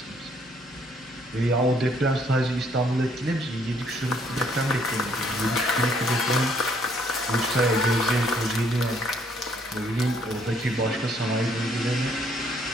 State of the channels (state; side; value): normal; both; correlation 0.67